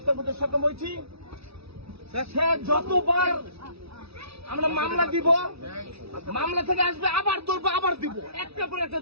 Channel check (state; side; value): late; left; 0.77 ms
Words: করতে সক্ষম হয়েছি। সে যতবার আমরা মামলা দিব, মামলা থেকে আসবে আবার ধরবো, আবার দিব, একটা পর একটা